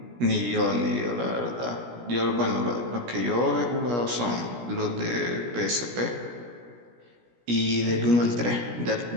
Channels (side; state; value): left; late; 17 ms